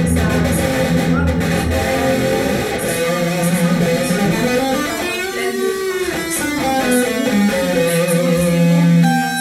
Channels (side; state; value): both; identical; correlation 1.00